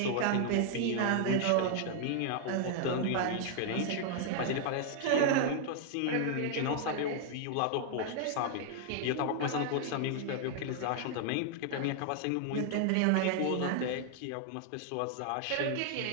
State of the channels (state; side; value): different; both; correlation 0.00